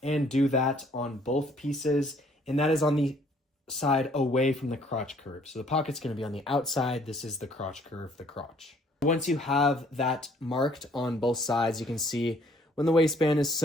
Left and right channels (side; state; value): both; normal; correlation 0.61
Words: and do that on both pieces. And that is on the side away from the crotch curve. So the pocket's going to be on the outside. This is the crotch curve, the crotch. Once you have that marked on both sides, you can see when the waistband is